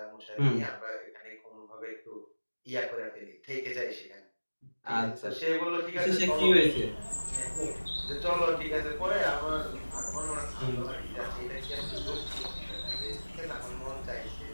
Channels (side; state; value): both; inverted; correlation -1.00